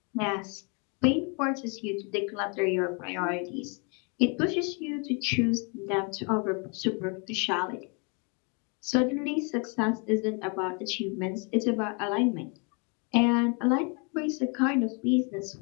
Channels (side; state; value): right; quieter; 34.6 dB